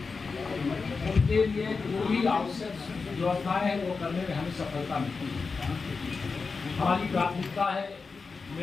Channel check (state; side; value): quieter; right; 4.6 dB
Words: उनके लिए जो भी आवश्यक व्यवस्थाएं हैं वो करने में हमें सफलता मिलती है। हमारी प्राथमिकता है